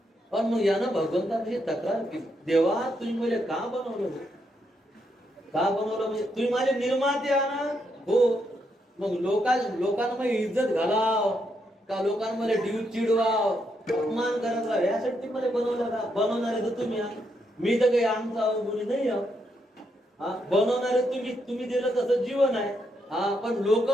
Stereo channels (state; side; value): normal; both; correlation 0.79